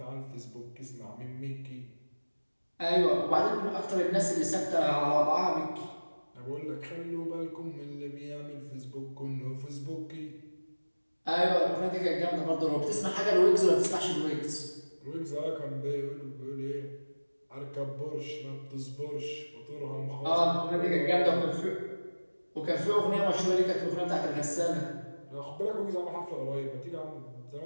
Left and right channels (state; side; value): inverted; both; correlation -1.00